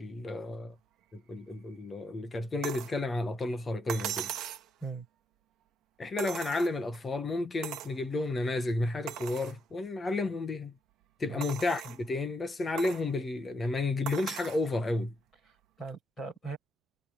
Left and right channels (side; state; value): both; normal; correlation 0.79